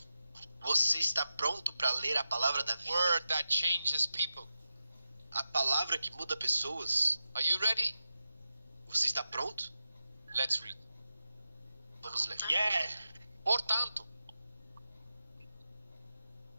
Você está pronto para ler a palavra da vida? Word that changes people. A palavra que muda pessoas? Are you ready? Você está pronto? Let's read. Vamos ler. Yeah. Portanto,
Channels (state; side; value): inverted; both; correlation -0.91